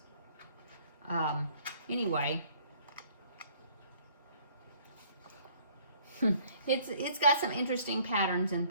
Anyway, it's got some interesting patterns and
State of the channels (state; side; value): inverted; both; correlation -0.58